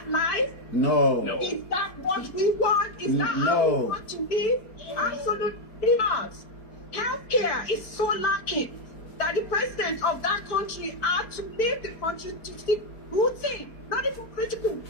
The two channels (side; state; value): right; late; 4.6 ms